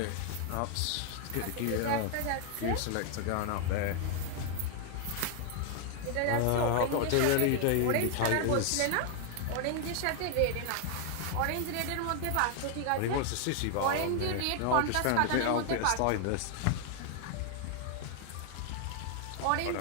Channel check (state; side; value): different; both; correlation 0.00